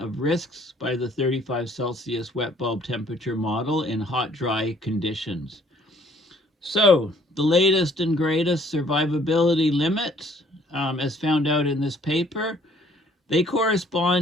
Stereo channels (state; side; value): normal; both; correlation 0.60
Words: risks by the 35 Celsius wet bulb temperature model in hot, dry conditions. So, the latest and greatest survivability limits, as found out in this paper, they